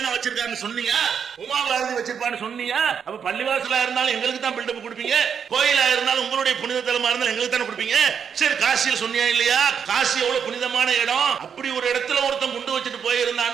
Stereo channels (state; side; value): quieter; left; 7.3 dB